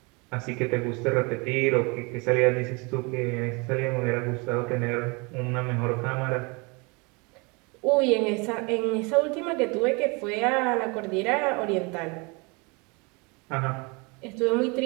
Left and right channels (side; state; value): left; quieter; 29.1 dB